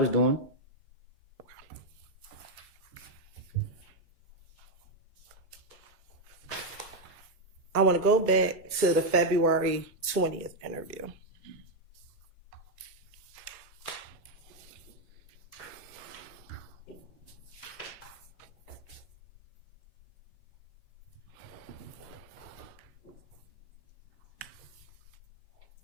doing. I want to go back to the February 20th interview.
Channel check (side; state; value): both; normal; correlation 0.01